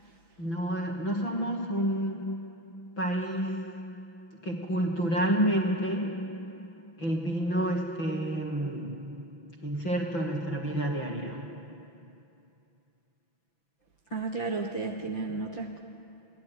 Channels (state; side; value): late; right; 5.9 ms